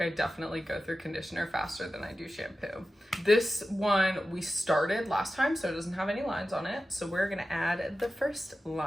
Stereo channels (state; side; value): normal; both; correlation 0.93